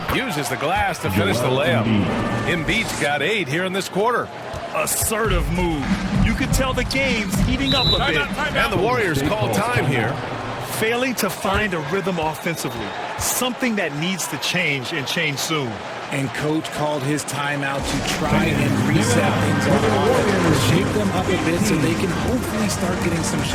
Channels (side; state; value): both; identical; correlation 1.00